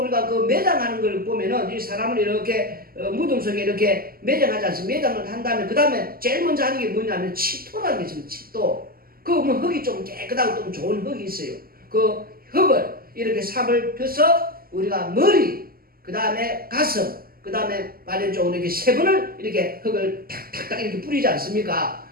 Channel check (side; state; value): left; late; 0.43 ms